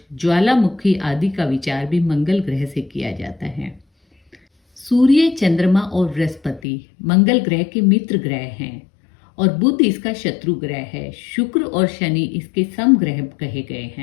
ज्वालामुखी आदि का विचार भी मंगल ग्रह से किया जाता है। सूर्य, चंद्रमा और बृहस्पति मंगल ग्रह के मित्र ग्रह हैं और बुध इसका शत्रु ग्रह है। शुक्र और शनि इसके समग्रह कहे गए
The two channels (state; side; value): drops out; right; at 6.6 s